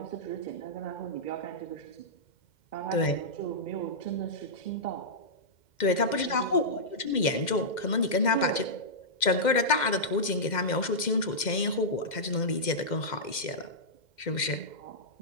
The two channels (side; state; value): right; late; 2.1 ms